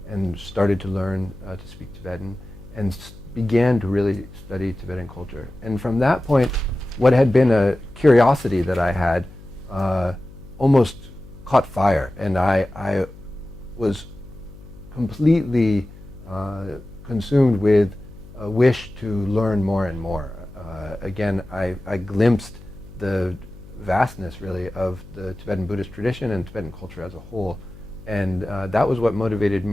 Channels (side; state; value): left; noise; hum, 18 dB below the sound